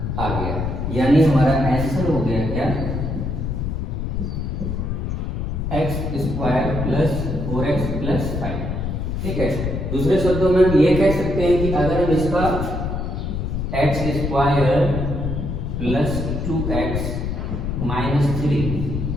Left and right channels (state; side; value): noise; left; rumble, 3 dB below the sound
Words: आ गया। यानी हमारा आंसर हो गया क्या, x square plus 4x plus 5, ठीक है। दूसरे शब्दों में हम ये कह सकते हैं कि अगर हम इसका x square plus 2x minus 3